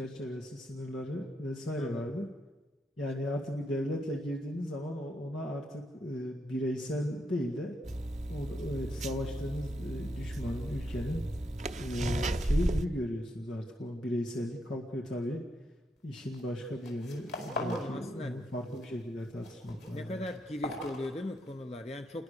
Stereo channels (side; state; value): both; normal; correlation 0.80